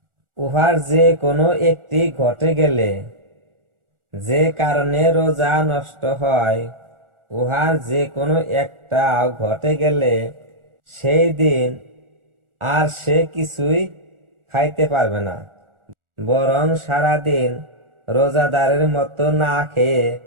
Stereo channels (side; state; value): left; late; 1.4 ms